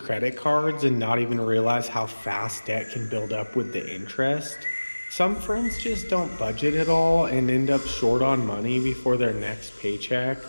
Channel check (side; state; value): both; inverted; correlation -1.00